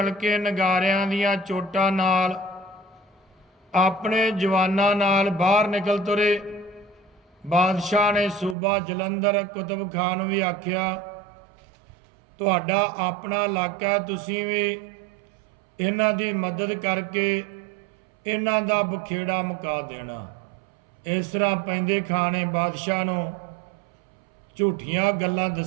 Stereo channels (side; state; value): left; drops out; at 8.6 s